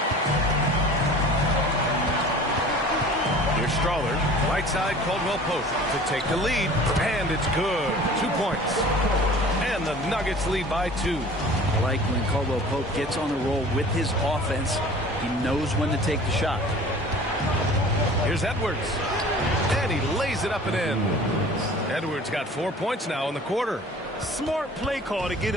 Here's Strawler. Right side, Caldwell Pope to take the lead. And it's good. 2 points. And the Nuggets lead by 2. I like when Caldwell Pope gets on the roll with his offense. He knows when to take the shot. Here's Edwards. And he lays it up and in. Edwards got 4 points now in the quarter. Smart play call to get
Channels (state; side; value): normal; both; correlation 0.45